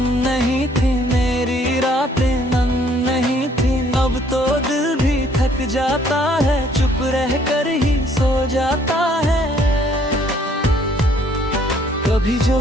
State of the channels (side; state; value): both; normal; correlation 0.63